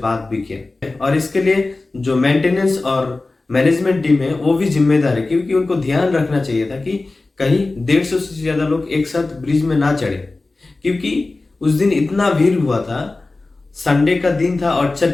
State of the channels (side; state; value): right; quieter; 3.3 dB